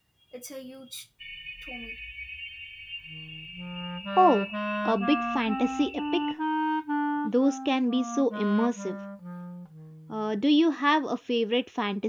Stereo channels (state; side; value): identical; both; correlation 1.00